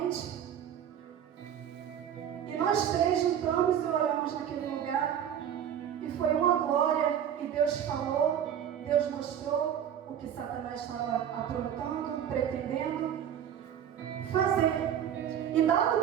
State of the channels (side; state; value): left; quieter; 9.4 dB